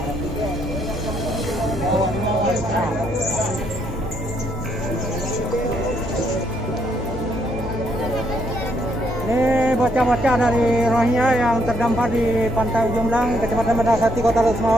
Ini bocah-bocah dari Rohingya yang terdampar di Pantai Ujung Belang, Kecamatan Medasati, Kota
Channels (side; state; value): both; normal; correlation 0.73